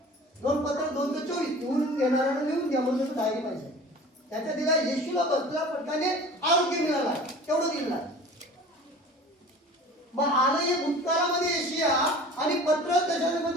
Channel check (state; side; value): normal; both; correlation 0.42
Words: 2 पत्र 2:24 लिहून घेणाऱ्याला लिहून घ्या म्हणून डायरी पाहिजे. त्याच्यात दिला येशूला बसलेला पटक्याने आरोग्य मिळाला तेवढं दिलेलं आहे. मग आलं हे भूतकाळामध्ये येशिया आणि पत्र